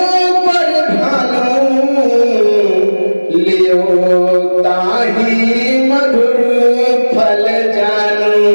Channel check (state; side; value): inverted; both; correlation -1.00